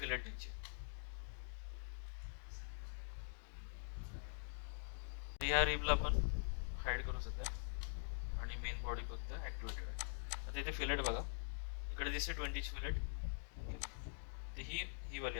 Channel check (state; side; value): silent; right; digital silence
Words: द्यायची. ह्या रिबला आपण हाईड करू सध्या आणि मेन बॉडी फक्त ॲक्टिवेटेड आहे. आता इथे फिलेट बघा इकडे दिसते 20 फिलेट. तर ही वाली